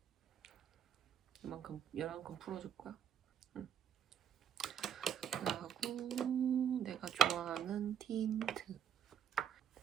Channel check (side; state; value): left; quieter; 9.0 dB